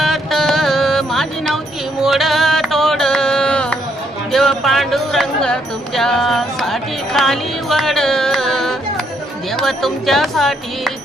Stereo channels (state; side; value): normal; both; correlation 0.73